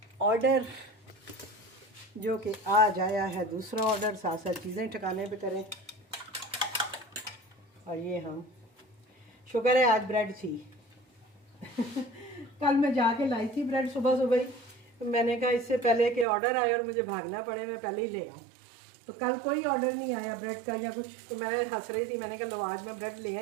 ऑर्डर जो कि आज आया है, दूसरा ऑर्डर। साथ साथ चीज़ें ठिकाने पे करें। और ये हम शुक्र है आज ब्रेड थी कल मैं जाके लाई थी ब्रेड सुबह सुबह ही। मैंने कहा इससे पहले कि ऑर्डर आए और मुझे भागना पड़े मैं पहले ही ले आऊँ। तो कल कोई ऑर्डर नहीं आया ब्रेड का या कुछ, तो मैं हंस रही थी। मैंने कहा लो आज मैं ब्रेड ले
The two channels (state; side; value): drops out; left; at 16.2 s